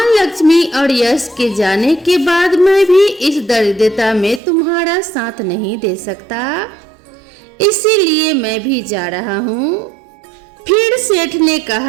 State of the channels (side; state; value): left; drops out; at 4.4 s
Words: लक्ष्मी और यश के जाने के बाद मैं भी इस दरिद्रता में तुम्हारा साथ नहीं दे सकता, इसीलिए मैं भी जा रहा हूँ। फिर सेठ ने